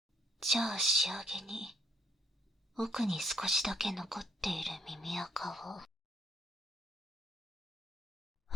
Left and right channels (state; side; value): normal; both; correlation 0.69